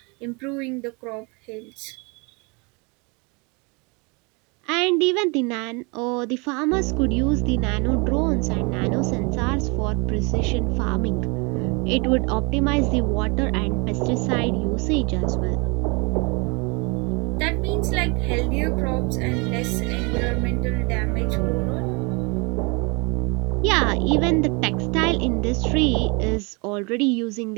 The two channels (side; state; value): left; quieter; 30.3 dB